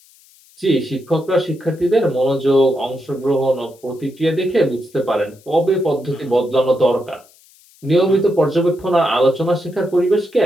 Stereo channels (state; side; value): noise; left; hiss, 29 dB below the sound